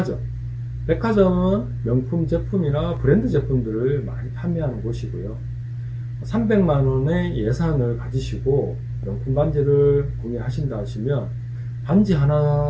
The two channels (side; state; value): both; identical; correlation 1.00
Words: 백화점은 명품 제품이나 브랜드 제품들을 많이 판매하는 곳이고요. 300만원의 예산을 가지시고 명품 반지를 구매하신다 하시면 반지